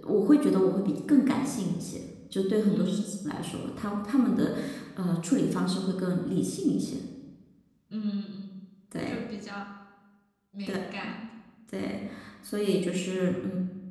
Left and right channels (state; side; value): identical; both; correlation 1.00